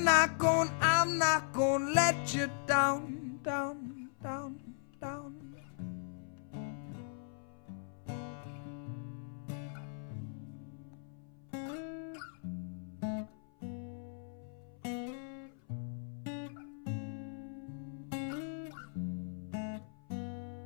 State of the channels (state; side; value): silent; right; 52 dB below the other